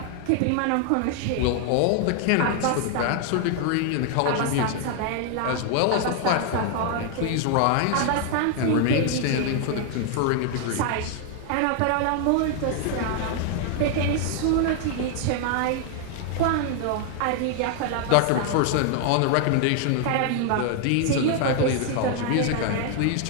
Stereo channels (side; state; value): both; different; correlation 0.00